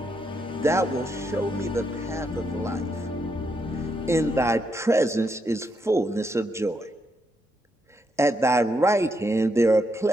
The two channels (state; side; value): normal; both; correlation 0.80